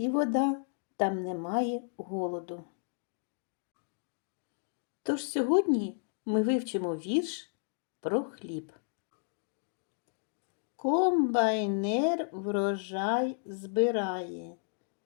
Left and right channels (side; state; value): right; silent; digital silence